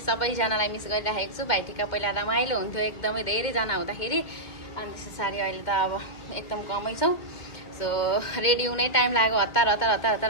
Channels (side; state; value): right; late; 2.1 ms